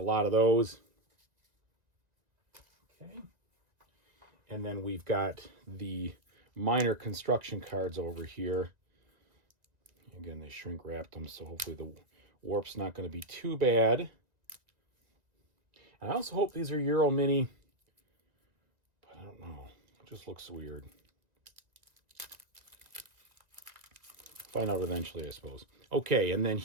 lot of those. Okay. And then we've got the minor construction cards over here. Again, they shrink wrapped them, so hopefully the warp's not going to be too bad. And I also hope these are Euro Mini, but I don't know. It just looks weird. Find out eventually, I suppose. Okay, and then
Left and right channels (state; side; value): late; left; 1.8 ms